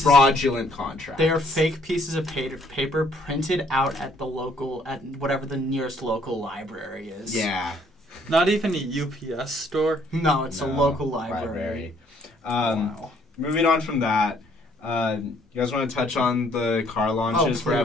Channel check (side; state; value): both; normal; correlation 0.64